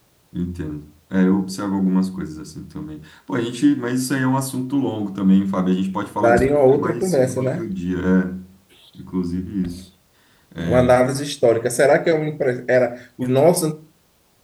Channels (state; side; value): identical; both; correlation 1.00